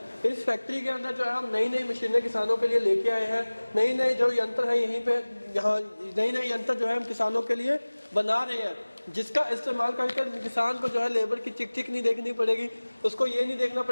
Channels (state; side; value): inverted; both; correlation -1.00